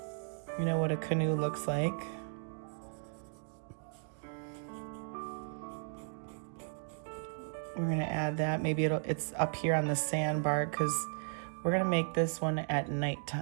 You know what a canoe looks like. We're going to add that. Maybe it's up here on the sandbar, because we're going to make this one at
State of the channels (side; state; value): left; silent; digital silence